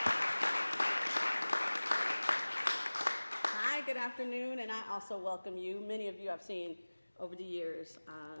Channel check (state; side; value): inverted; both; correlation -1.00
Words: Good afternoon, and I also welcome you. Many of you I've seen over the years